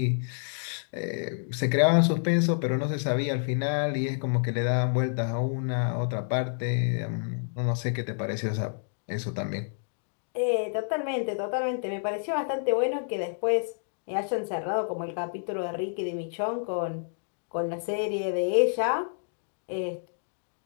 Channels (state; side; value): silent; right; digital silence